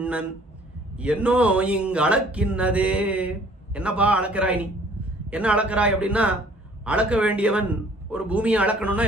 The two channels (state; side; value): normal; both; correlation 0.55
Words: என்னோ இங்கு அளக்கின்னதே. என்னப்பா அளக்கிறாய் நீ, என்ன அளக்கிறாய் அப்படின்னா, அளக்க வேண்டியவன் ஒரு பூமியை அளக்கணும்னா